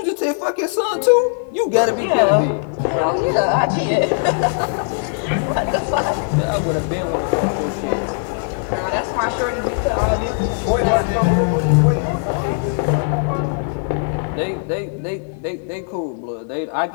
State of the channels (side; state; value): right; silent; 66 dB below the other